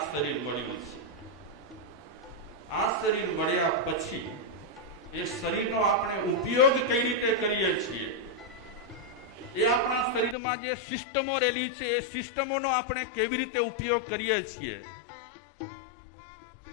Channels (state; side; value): drops out; right; at 10.4 s